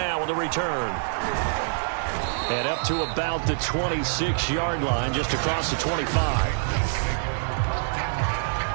with a return. And up to about the 26-yard line, just across the 25.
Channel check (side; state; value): left; silent; 61 dB below the other